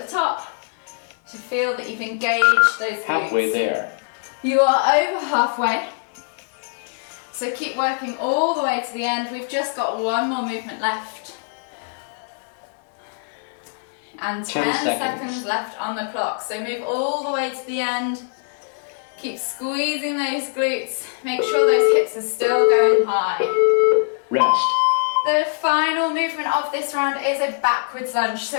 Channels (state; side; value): silent; right; digital silence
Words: the top to feel that you've engaged those glutes. Halfway there. You are over halfway. So keep working all the way to the end. We've just got one more movement left. And 10 seconds left on the clock. So move all the way to the end. Keep squeezing those glutes. Make sure those hips are still going high. Rest. The final movement of this round is a backwards lunge. So